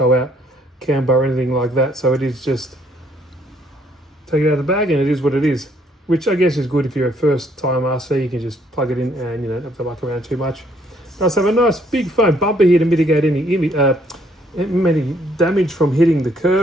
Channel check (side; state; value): both; normal; correlation 0.67